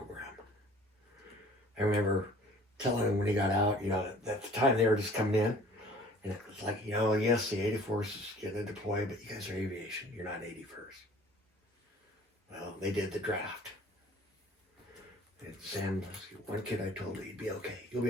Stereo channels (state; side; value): normal; both; correlation 0.50